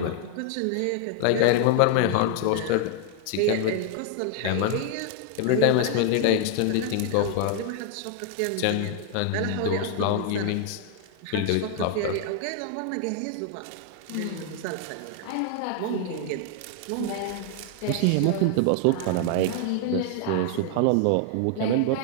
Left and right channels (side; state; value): both; different; correlation 0.00